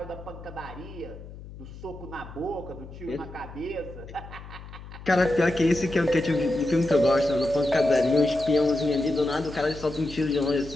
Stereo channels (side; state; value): left; noise; hum, 15 dB below the sound